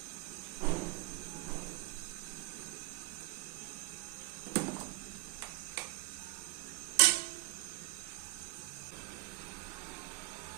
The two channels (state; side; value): quieter; left; 21.0 dB